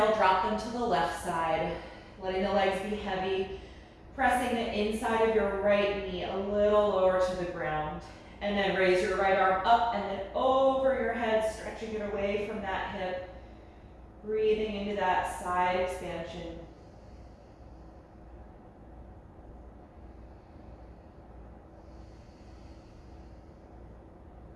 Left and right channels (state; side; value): identical; both; correlation 1.00